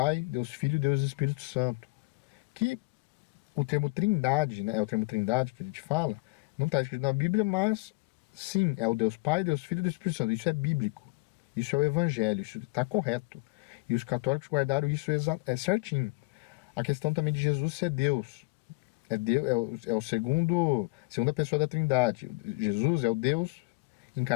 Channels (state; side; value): quieter; right; 27.5 dB